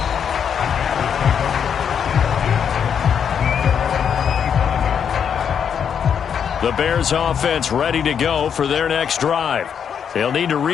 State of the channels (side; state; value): right; quieter; 7.7 dB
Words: The Bears offense ready to go for their next drive. They'll need to